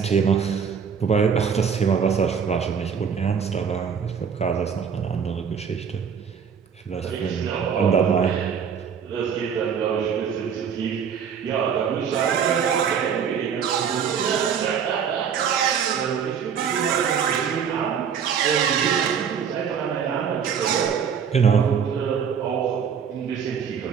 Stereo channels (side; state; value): left; quieter; 7.1 dB